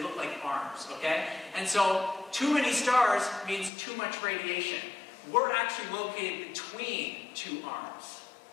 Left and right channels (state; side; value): drops out; right; at 3.7 s